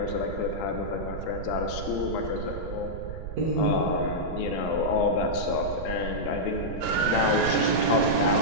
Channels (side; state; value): right; noise; rumble, 8 dB below the sound